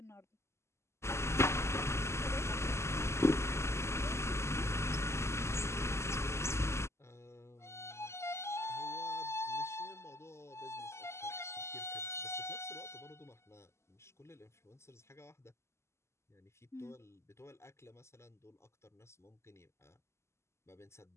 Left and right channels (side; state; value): right; late; 0.13 ms